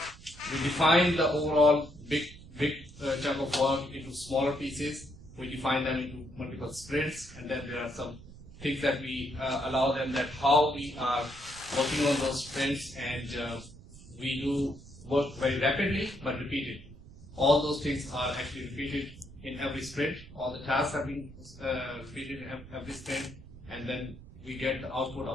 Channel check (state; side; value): noise; right; rumble, 18 dB below the sound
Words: define the overall big chunk of work into smaller pieces. We define them into multiple sprints, and then there are some things that we allow them that how we are working on those sprints, and we do work very rapidly but repeatedly. All those things are actually repeated in every sprint. All the tasks have been repeated in every sprint, and then we get the output